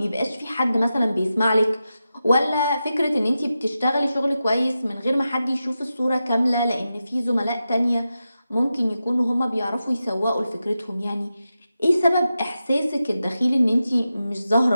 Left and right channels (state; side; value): inverted; both; correlation -0.91